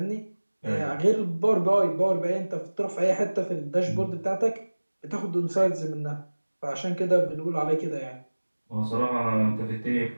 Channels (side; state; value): both; inverted; correlation -1.00